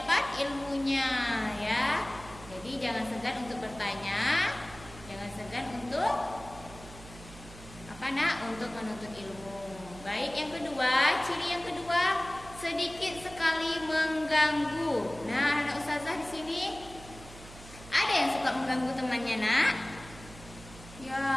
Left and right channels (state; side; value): noise; right; hum, 17 dB below the sound